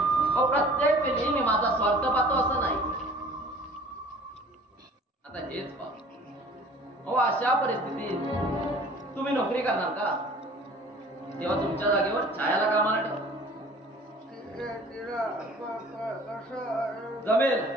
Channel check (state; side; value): normal; both; correlation 0.49